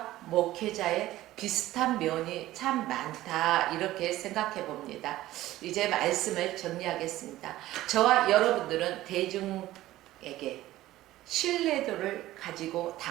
목회자의 비슷한 면이 참 많다, 이렇게 생각해 봅니다. 이제 말씀을 정리하겠습니다. 저와 여러분들은 대중에게 신뢰도를 가지고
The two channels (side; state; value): left; quieter; 15.6 dB